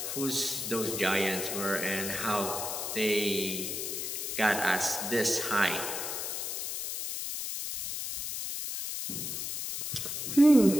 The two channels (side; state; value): left; noise; hiss, 4 dB below the sound